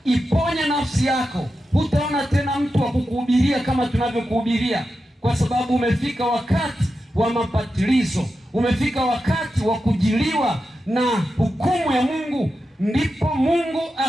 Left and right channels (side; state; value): both; normal; correlation 0.90